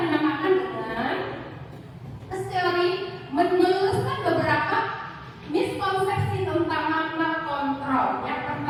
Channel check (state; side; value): identical; both; correlation 1.00